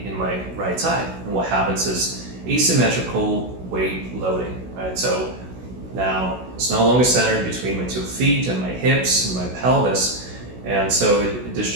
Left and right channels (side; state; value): left; late; 16 ms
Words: in my right side. And what happens is asymmetrical weight loading, right? So now it's no longer centered between my 2 feet and my hips and my pelvis, and so